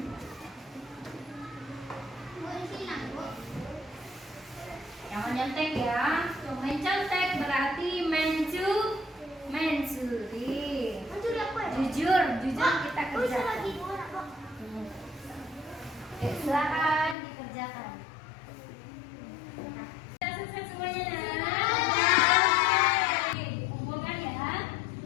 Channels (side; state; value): right; drops out; at 17.2 s